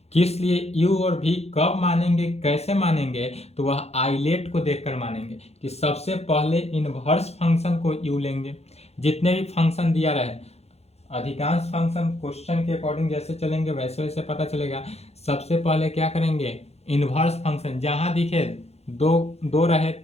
किस लिए u और v कब मानेंगे, कैसे मानेंगे, तो वह आइलेट को देखकर मानेंगे कि सबसे पहले इनवर्स फंक्शन को u लेंगे। जितने भी फंक्शन दिया रहे, अधिकांश फंक्शन क्वेश्चन के अकॉर्डिंग जैसे चलेंगे वैसे वैसे पता चलेगा। सबसे पहले क्या करेंगे, इनवर्स फंक्शन जहां दिखे, दो रहे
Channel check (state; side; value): late; right; 0.31 ms